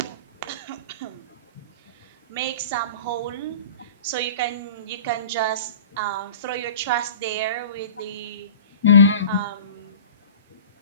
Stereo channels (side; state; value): both; inverted; correlation -0.40